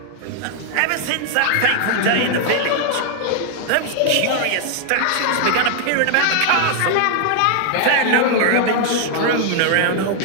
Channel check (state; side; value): different; both; correlation 0.00